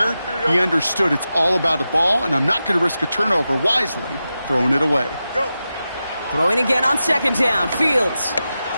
he understood it's all about the ball, and I'm not going to risk a turnover wisely, throwing it away. Go. Throwing again on 2nd down. Fields.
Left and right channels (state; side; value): inverted; both; correlation -0.92